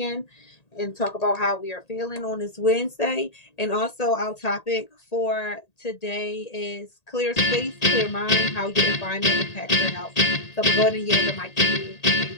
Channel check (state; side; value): late; right; 1.8 ms